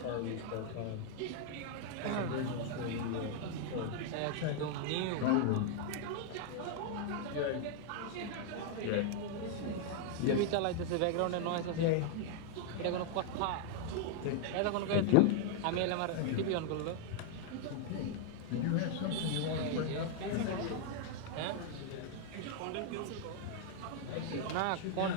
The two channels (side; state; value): both; different; correlation 0.00